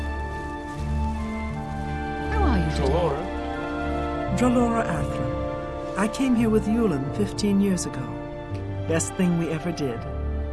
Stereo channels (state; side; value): identical; both; correlation 1.00